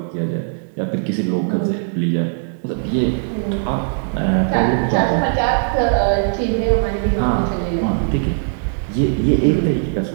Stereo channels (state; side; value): silent; left; 66 dB below the other